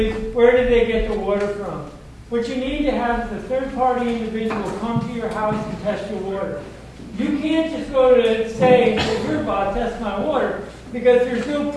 where did they get the water from? What you need to have is a third-party individual come to your house and test your water. You can't just go to say, here, Bob, test my water, because there's no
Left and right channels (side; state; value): both; identical; correlation 1.00